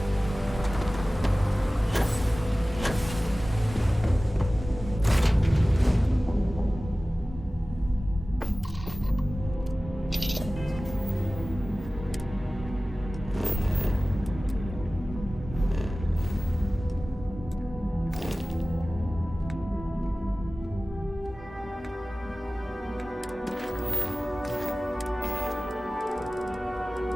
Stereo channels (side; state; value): both; normal; correlation 0.97